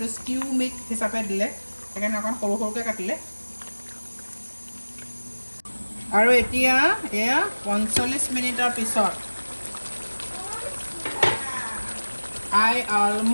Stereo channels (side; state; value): both; inverted; correlation -1.00